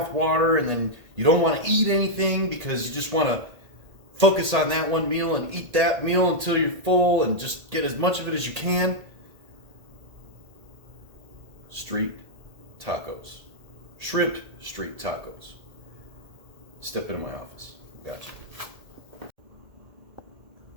water, and then you don't want to eat anything because you just want to focus on that one meal and eat that meal until you're full and just get as much of it as you can. Street tacos. Shrimp street tacos. Step into my office. Gotcha.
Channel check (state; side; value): late; left; 1.8 ms